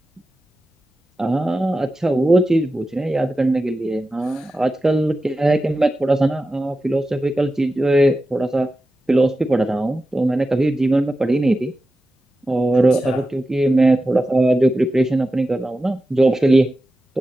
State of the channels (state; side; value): normal; both; correlation 0.93